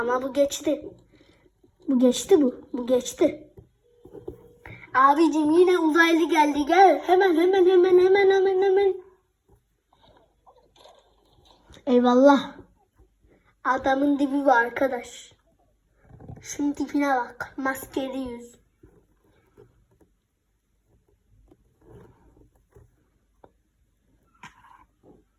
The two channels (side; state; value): both; identical; correlation 1.00